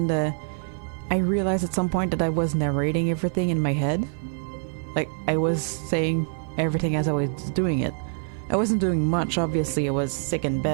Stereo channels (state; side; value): silent; left; 55 dB below the other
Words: I realized at some point that I was narrating everything in my head. Like, I was saying everything as I was doing it. I wasn't doing much, obviously, I was sick in